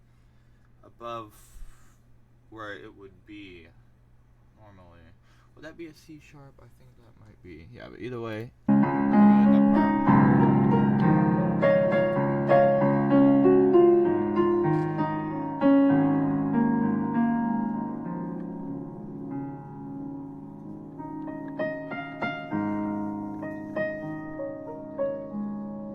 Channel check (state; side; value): identical; both; correlation 1.00